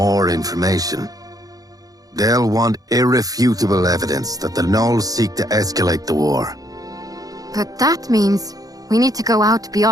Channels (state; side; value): late; left; 0.18 ms